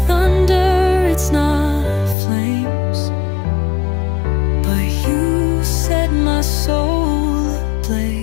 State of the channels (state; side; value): drops out; right; at 2.1 s